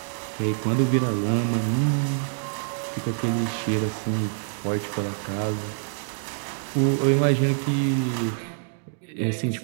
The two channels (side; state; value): left; silent; 61 dB below the other